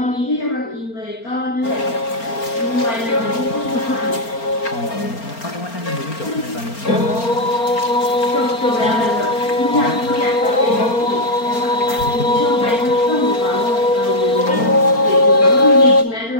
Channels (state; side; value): late; right; 4.4 ms